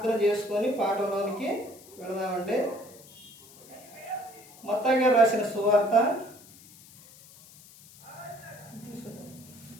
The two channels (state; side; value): noise; left; hiss, 22 dB below the sound